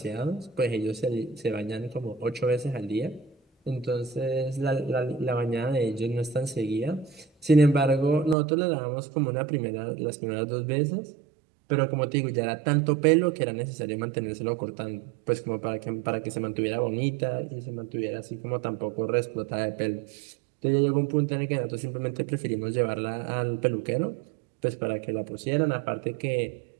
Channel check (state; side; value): drops out; left; at 8.3 s